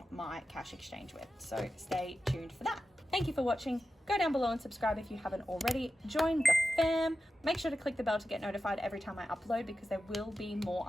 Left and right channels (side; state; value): both; normal; correlation 0.92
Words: my cash exchange with. So stay tuned for that. Thank you for watching. Go down below and subscribe if you haven't already. Join the fam. Make sure to click the bell to get notified every time I upload because there will be more